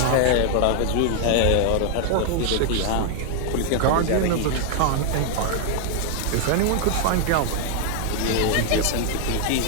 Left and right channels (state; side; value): different; both; correlation 0.00